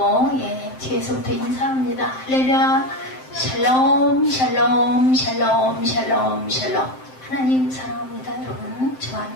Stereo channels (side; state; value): right; late; 7.7 ms